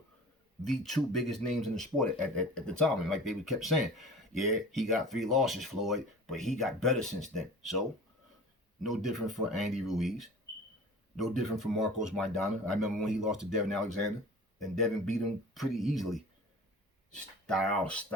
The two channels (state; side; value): normal; both; correlation 0.41